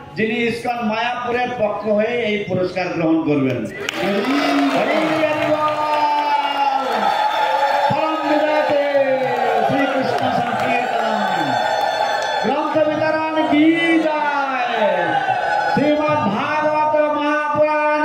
যিনি ইসকন মায়াপুরের পক্ষ হয়ে এই পুরস্কার গ্রহণ করবেন। গ্রন্থ বিতরণ কি যায়, শ্রীমৎ ভাগবত মহাপুরাণ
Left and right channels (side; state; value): both; identical; correlation 1.00